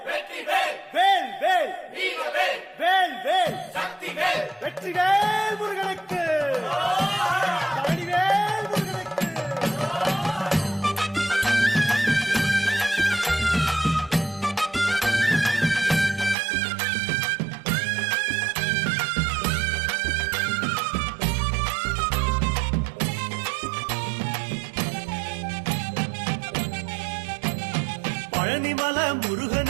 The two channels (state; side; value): drops out; left; at 16.4 s